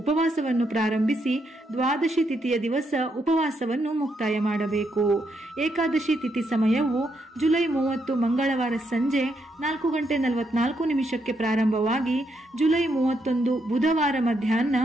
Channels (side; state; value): both; normal; correlation 0.78